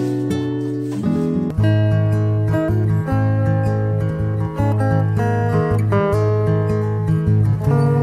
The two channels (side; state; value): both; identical; correlation 1.00